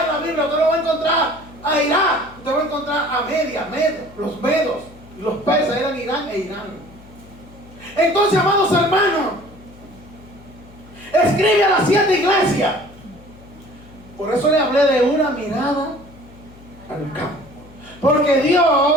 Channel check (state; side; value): noise; left; hum, 22 dB below the sound